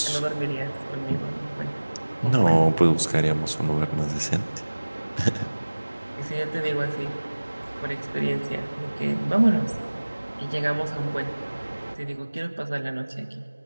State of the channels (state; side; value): inverted; both; correlation -1.00